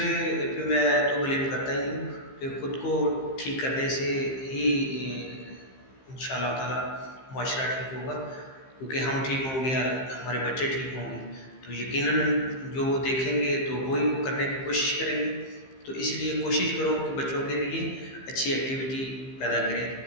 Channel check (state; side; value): late; right; 15 ms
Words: पे मैं तो ब्लेम करता ही नहीं कि खुद को ठीक करने से ही इंशाअल्लाह ताला मुआशरा ठीक होगा, क्योंकि हम ठीक होंगे, हमारे बच्चे ठीक होंगे, तो यकीनन जो वो देखेंगे तो वही वो करने की कोशिश करेंगे। तो इसलिए कोशिश करो कि बच्चों के लिए अच्छी एक्टिविटी पैदा